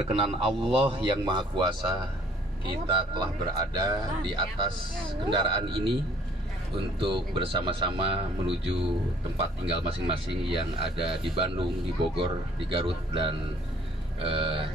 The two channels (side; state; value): both; normal; correlation 0.58